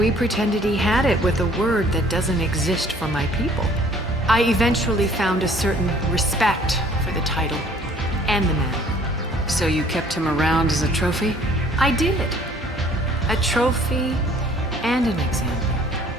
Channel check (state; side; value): normal; both; correlation 0.56